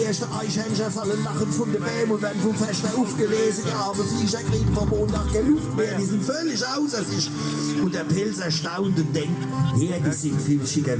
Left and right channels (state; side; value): identical; both; correlation 1.00